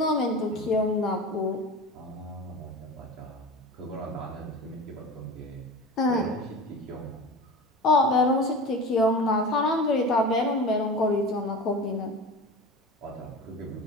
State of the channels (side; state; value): both; normal; correlation 0.32